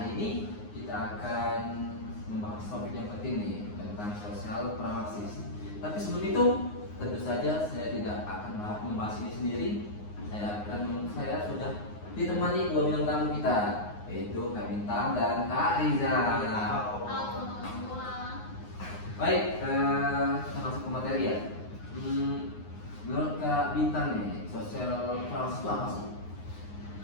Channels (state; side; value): late; right; 9.6 ms